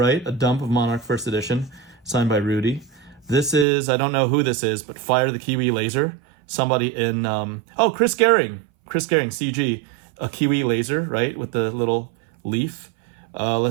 A dump of Monarch First Edition, signed by Rudy. This is, I don't know who this is, but Fire the Kiwi Laser. Somebody in, Chris Gehring, CG. A Kiwi laser, right, with the little leaf.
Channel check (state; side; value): drops out; left; at 3.7 s